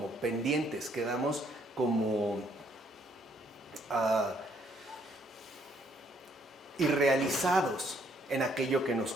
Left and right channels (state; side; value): normal; both; correlation 0.68